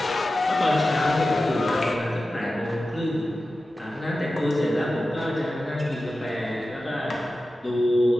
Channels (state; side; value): normal; both; correlation 0.94